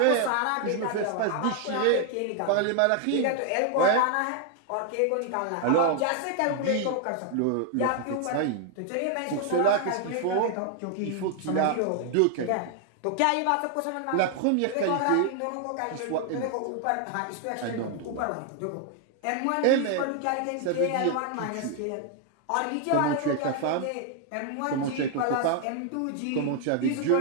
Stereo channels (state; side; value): different; both; correlation 0.00